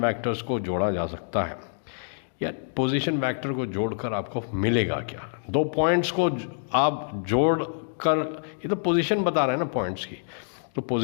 वेक्टर्स को जोड़ा जा सकता है या पोजीशन वेक्टर को जोड़कर आपको मिलेगा क्या. दो पॉइंट्स को आप जोड़कर, ये तो पोजीशन बता रहे हैं ना पॉइंट्स की, तो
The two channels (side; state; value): right; silent; digital silence